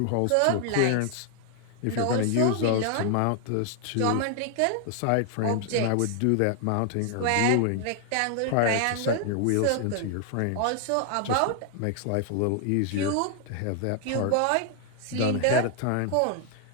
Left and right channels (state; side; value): different; both; correlation 0.00